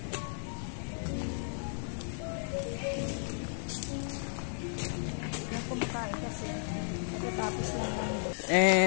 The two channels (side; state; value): right; silent; 55 dB below the other